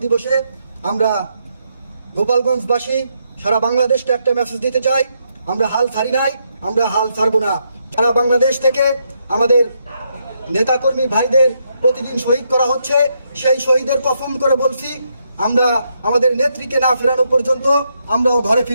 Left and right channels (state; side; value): inverted; both; correlation -0.78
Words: দিবসে আমরা গোপালগঞ্জবাসী সারা বাংলাদেশকে একটা মেসেজ দিতে চাই, আমরা হাল ছাড়ি নাই, আমরা হাল ছাড়বো না। সারা বাংলাদেশ থেকে আমাদের নেতাকর্মী ভাইদের প্রতিদিন শহীদ করা হচ্ছে, সেই শহীদের কসম করে বলছি আমরা আমাদের নেত্রীকে না ফেরানো পর্যন্ত আমরাও ঘরে